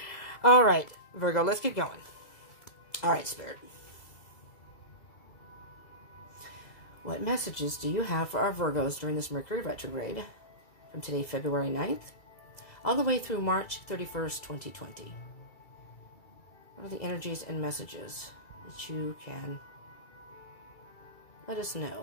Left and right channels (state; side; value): late; right; 2.0 ms